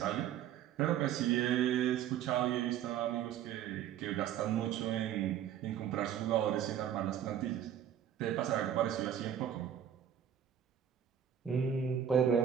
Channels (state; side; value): quieter; left; 9.6 dB